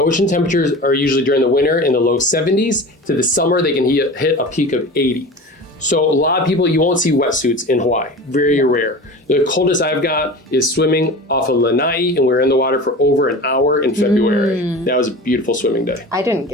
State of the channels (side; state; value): both; normal; correlation 0.34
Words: temperatures are usually during the winter in the low 70s. To the summer, they can hit a peak of 80. So a lot of people, you won't see wetsuits in Hawaii, very rare. The coldest I've got is swimming off of Lanai, and we were in the water for over an hour in February. That was a beautiful swimming day. I didn't